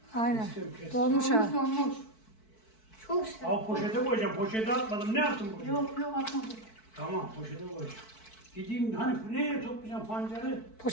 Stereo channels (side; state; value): right; late; 4.6 ms